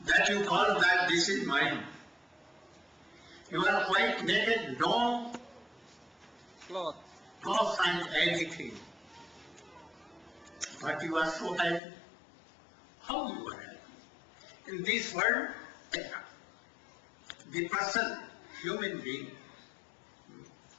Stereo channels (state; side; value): drops out; right; at 11.8 s